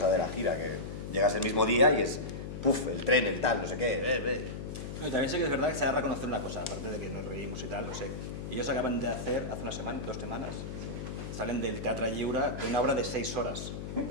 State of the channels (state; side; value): noise; left; hum, 7 dB below the sound